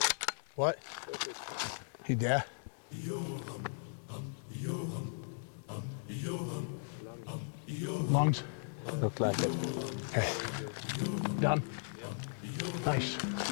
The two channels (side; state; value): right; silent; digital silence